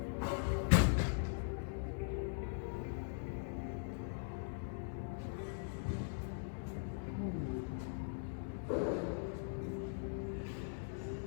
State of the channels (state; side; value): silent; right; digital silence